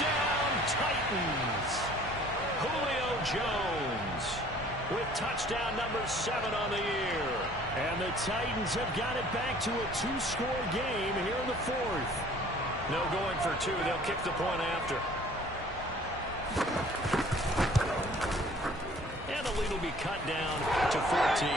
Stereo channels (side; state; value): both; normal; correlation 0.53